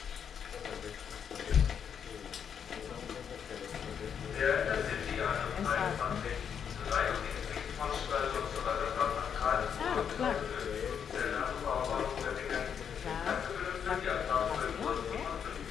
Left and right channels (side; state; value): right; quieter; 7.7 dB